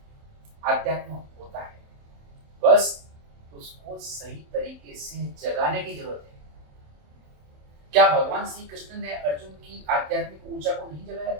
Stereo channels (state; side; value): late; left; 27 ms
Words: आध्यात्म होता है, बस उसको सही तरीके से जगाने की जरूरत है। क्या भगवान श्री कृष्ण ने अर्जुन की आध्यात्मिक ऊर्जा को नहीं जगाया